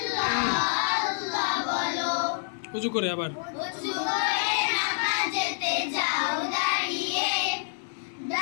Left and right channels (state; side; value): silent; right; digital silence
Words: উজু করে আবার নামাজেতে যাও দাঁড়িয়ে,